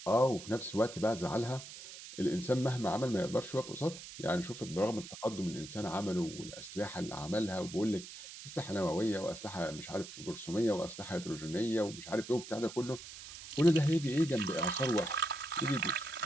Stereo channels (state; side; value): noise; right; hiss, 13 dB below the sound